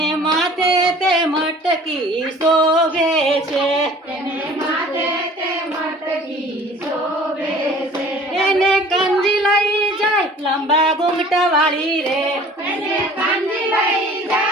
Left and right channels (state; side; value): normal; both; correlation 0.49